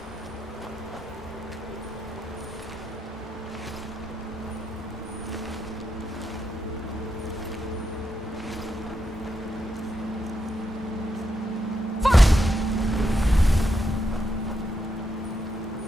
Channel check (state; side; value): normal; both; correlation 0.82